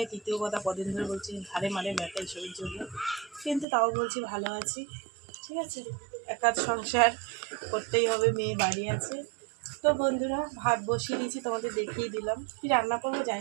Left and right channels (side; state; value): left; drops out; at 3.7 s